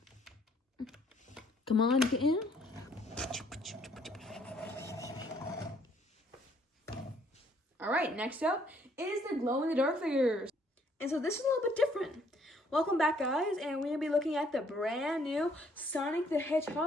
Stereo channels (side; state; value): both; normal; correlation 0.65